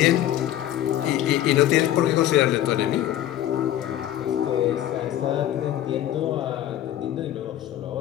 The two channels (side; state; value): right; quieter; 12.5 dB